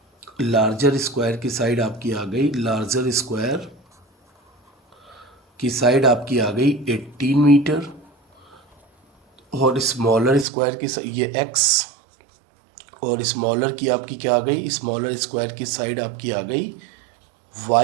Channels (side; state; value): left; drops out; at 10.5 s